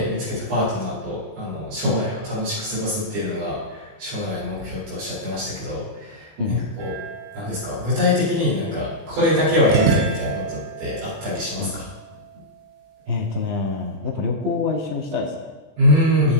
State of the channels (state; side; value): late; left; 20 ms